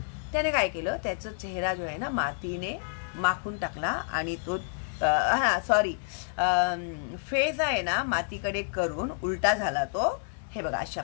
त्याने काय केलं, त्याचा चेहरा जो आहे ना मातीने माखून टाकला आणि तो फेस आहे ना मातीकडे करून उलटा झाला तो, हे बघा अशा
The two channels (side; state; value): right; silent; 59 dB below the other